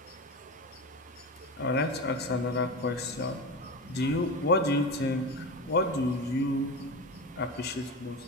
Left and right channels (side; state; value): both; normal; correlation 0.24